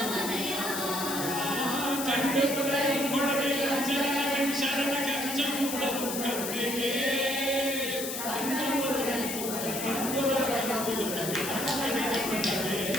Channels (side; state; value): left; noise; hiss, 5 dB below the sound